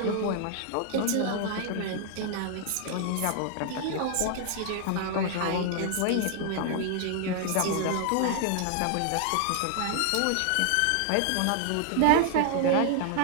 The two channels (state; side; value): different; both; correlation 0.00